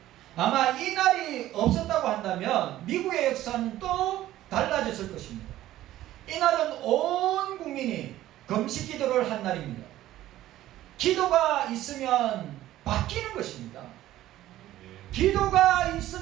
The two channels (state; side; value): quieter; left; 14.3 dB